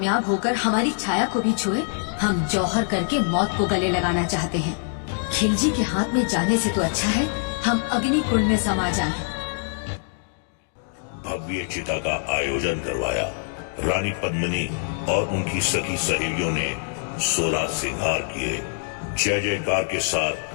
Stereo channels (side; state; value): right; silent; digital silence